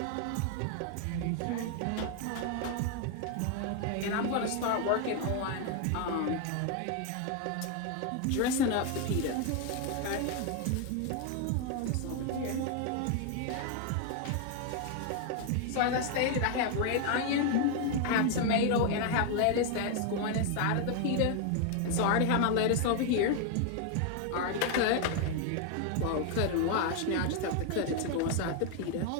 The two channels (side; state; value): both; different; correlation 0.01